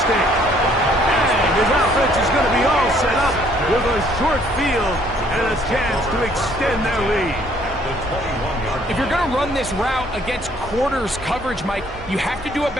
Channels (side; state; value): both; normal; correlation 0.63